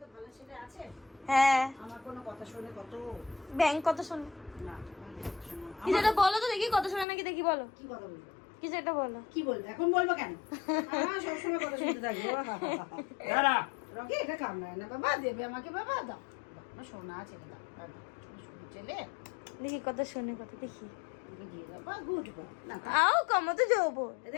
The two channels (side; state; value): right; drops out; at 7.1 s